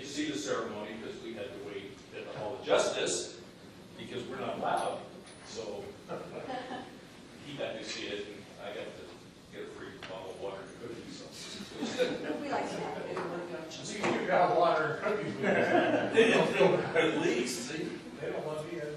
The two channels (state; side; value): identical; both; correlation 1.00